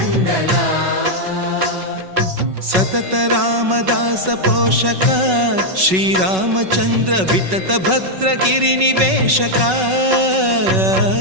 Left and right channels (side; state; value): left; late; 5.4 ms